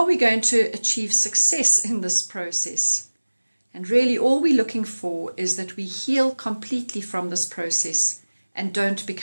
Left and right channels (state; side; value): inverted; both; correlation -1.00